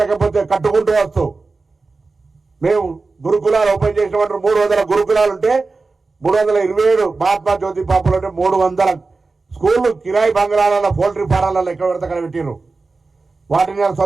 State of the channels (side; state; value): left; quieter; 3.9 dB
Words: కట్టుకుంటూ వస్తూ, మేము గురుకులాలు ఓపెన్ చేసినటువంటి 300 గురుకులాలు ఉంటే 327 మహాత్మా జ్యోతి పాపలు అంటే 300 స్కూళ్ళు కిరాయి బంగ్లాలలో, పౌల్ట్రీ ఫారాలలో ఎక్కడ పడితే అక్కడ పెట్టిరు. వాటిని